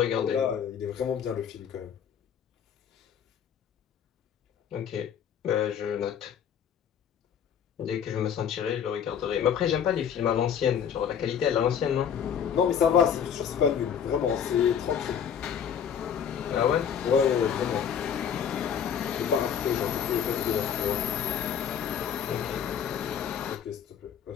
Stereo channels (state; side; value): quieter; right; 8.1 dB